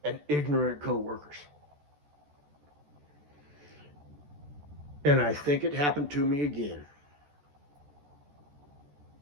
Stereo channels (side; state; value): left; late; 14 ms